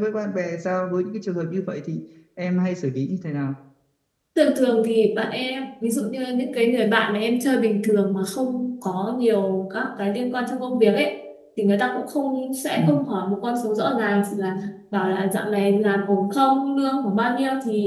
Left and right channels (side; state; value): both; identical; correlation 1.00